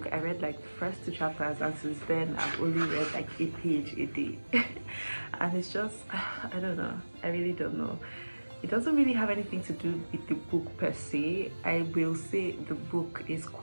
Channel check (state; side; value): inverted; both; correlation -1.00